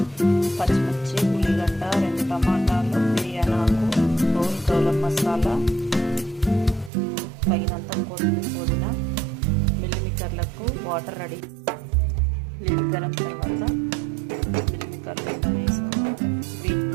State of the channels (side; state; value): left; drops out; at 6.9 s